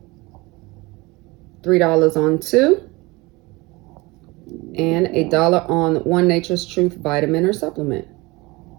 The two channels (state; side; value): quieter; left; 23.4 dB